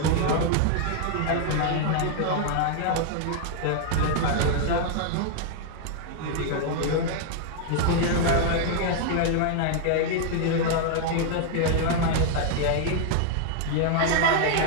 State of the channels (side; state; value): both; different; correlation 0.00